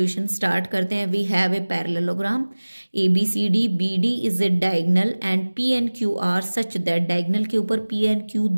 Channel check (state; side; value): inverted; both; correlation -1.00